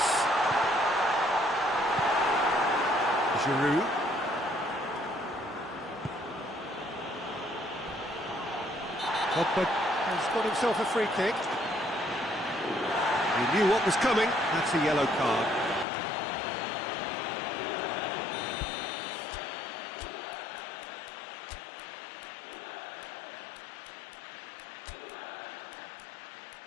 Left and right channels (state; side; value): drops out; right; at 15.9 s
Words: Giroud. Pogba has got himself a free kick. He knew what was coming. That's a yellow card.